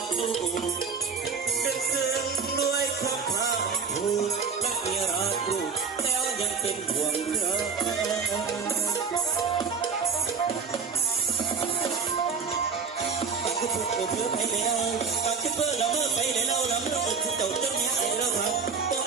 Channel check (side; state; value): left; quieter; 5.6 dB